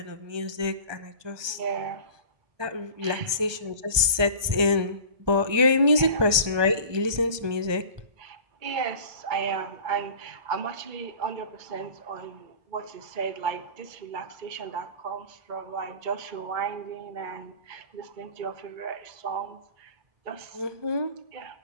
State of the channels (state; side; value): late; left; 1.3 ms